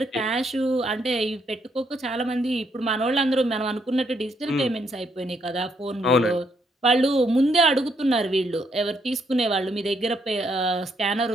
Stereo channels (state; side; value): normal; both; correlation 0.74